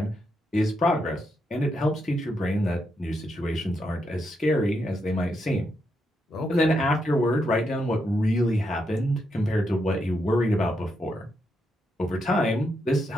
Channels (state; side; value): normal; both; correlation 0.81